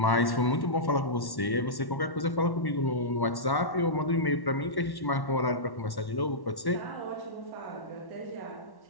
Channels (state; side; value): late; right; 1.1 ms